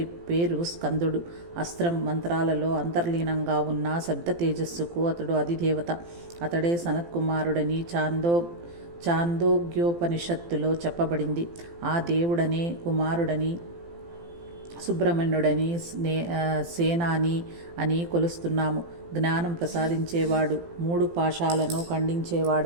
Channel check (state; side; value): late; left; 18 ms